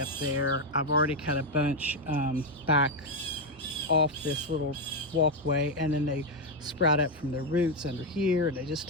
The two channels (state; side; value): normal; both; correlation 0.04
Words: up there. I've already cut a bunch back off this little walkway, and then they sprout up from their roots under here, and they just